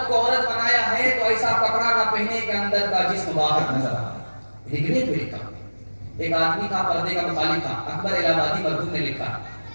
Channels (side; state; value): both; inverted; correlation -1.00